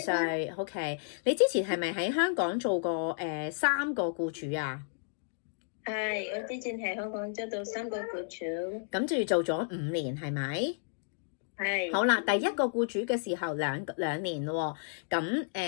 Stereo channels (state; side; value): silent; right; digital silence